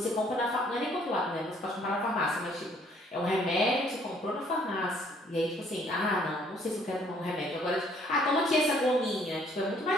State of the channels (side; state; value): both; normal; correlation 0.62